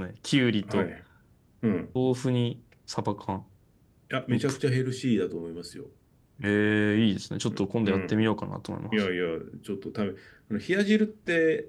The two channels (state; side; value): identical; both; correlation 1.00